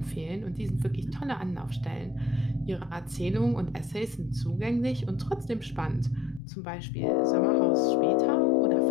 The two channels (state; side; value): drops out; right; at 6.4 s